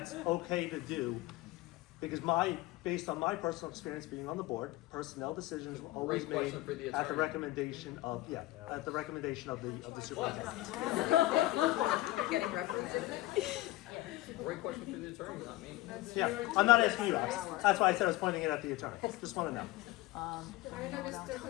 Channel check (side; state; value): right; quieter; 17.6 dB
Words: okay to do, because based on my personal experience being on the board, personnel decisions were always Great made question for the at the attorney. recommendation of, at the recommendation of the superintendent. Getting reprimanded. Great question for the attorney, not me. Yeah, I'm not asking you, Alex. That's why I said I was pointing it at the attorney. Just want to know. I know, Mr.